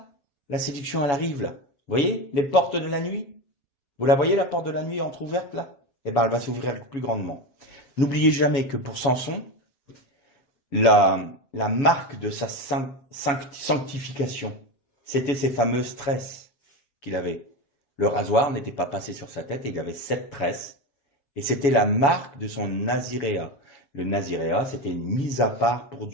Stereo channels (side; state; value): right; late; 7.1 ms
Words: La séduction, elle arrive, là. Vous voyez, les portes de la nuit? Vous la voyez, la porte de la nuit entrouverte, là? Eh ben, elle va s'ouvrir plus grandement. N'oubliez jamais que pour Samson, la marque de sa sanctification, c'était ces fameuses tresses qu'il avait. Le rasoir n'était pas passé sur sa tête et il avait 7 tresses. Et c'était la marque de son naziréat. Le naziréat, c'était une mise à part pour